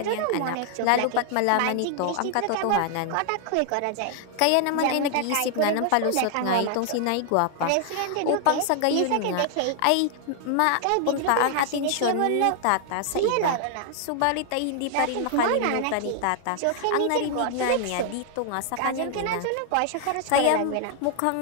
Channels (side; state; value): both; different; correlation 0.00